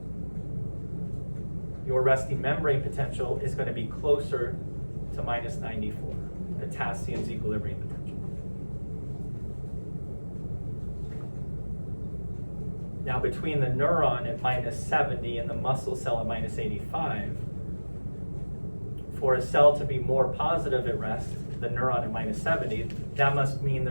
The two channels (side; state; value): both; inverted; correlation -1.00